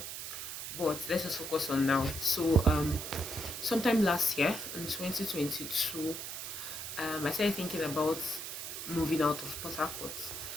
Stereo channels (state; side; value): noise; right; hiss, 7 dB below the sound